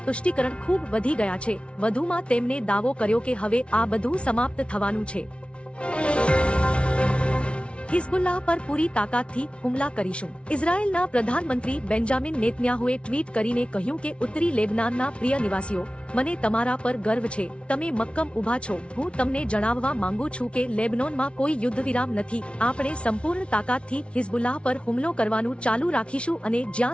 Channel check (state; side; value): late; right; 0.059 ms